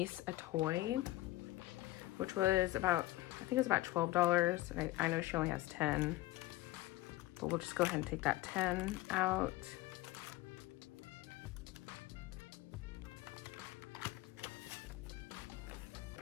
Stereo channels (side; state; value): right; quieter; 17.5 dB